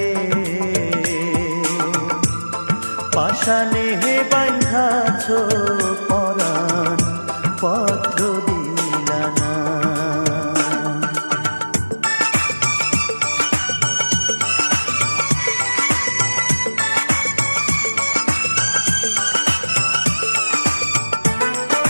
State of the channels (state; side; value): inverted; both; correlation -1.00